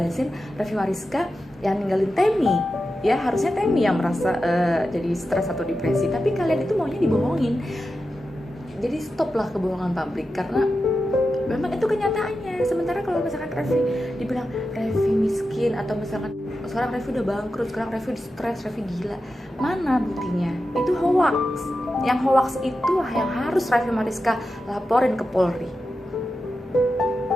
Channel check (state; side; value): normal; both; correlation 0.91